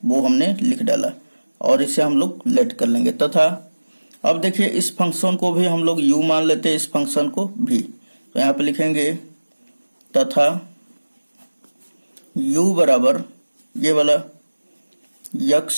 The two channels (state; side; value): inverted; both; correlation -1.00